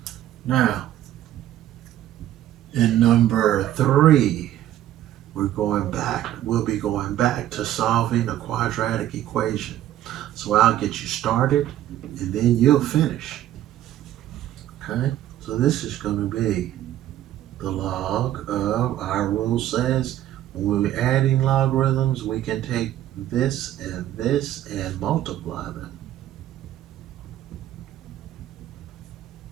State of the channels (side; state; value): left; quieter; 12.7 dB